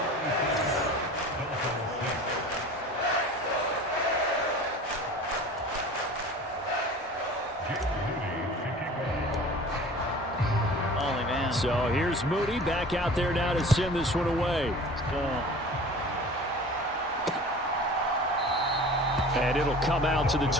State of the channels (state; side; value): normal; both; correlation 0.41